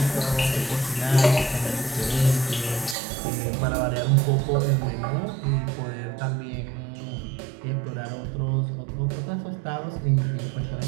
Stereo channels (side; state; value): left; drops out; at 3.0 s